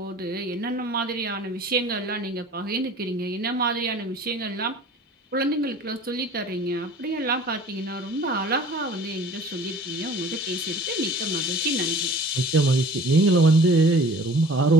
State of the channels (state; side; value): normal; both; correlation 0.46